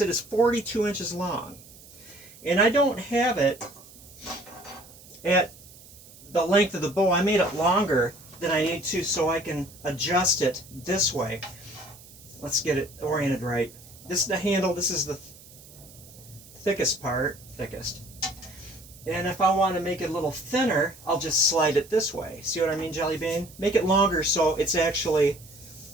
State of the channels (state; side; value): noise; right; hiss, 21 dB below the sound